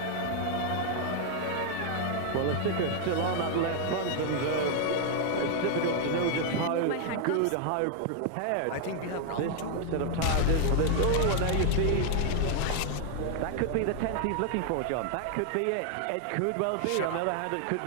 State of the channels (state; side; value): different; both; correlation 0.00